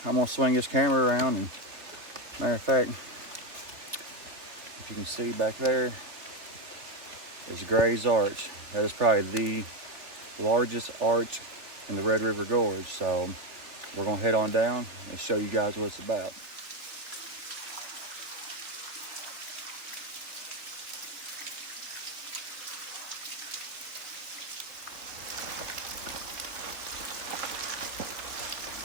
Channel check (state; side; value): late; left; 3.4 ms